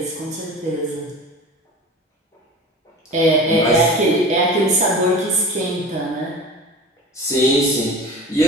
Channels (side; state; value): both; normal; correlation 0.35